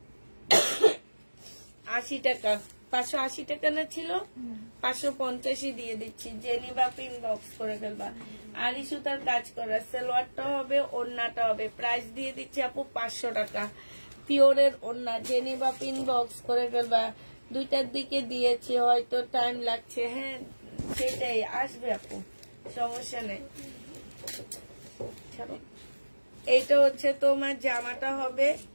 টাকা। 580 টাকা না ছিল, 550 দিয়ে দিচ্ছি, যে নিবা ইনবক্স করে ফেলবা। আরি সুতার কাজ করা, সালোয়ারটা হবে, ওড়নাটা হবে। প্রাইস দিয়ে দিচ্ছি আপু 500 টাকা। পিওরের ওড়না, যে নিবা ইনবক্স করে ফেলবা। দুইটার দিকে দিয়েছি, হয়তো টাইম লাগছে। হ্যাঁ সেটাই আসবে আপু, সমস্যা নেই। এইটা হচ্ছে তোমার জামাটা হবে,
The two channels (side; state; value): both; inverted; correlation -1.00